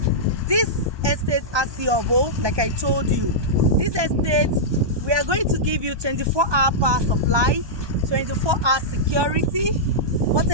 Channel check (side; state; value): left; late; 1.2 ms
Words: This estate Ogombo, like I told you, this estate, we are going to give you 24-hour power supply, 24-hour security,